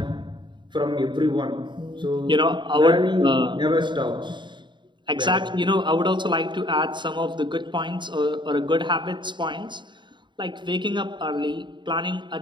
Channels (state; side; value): late; left; 0.23 ms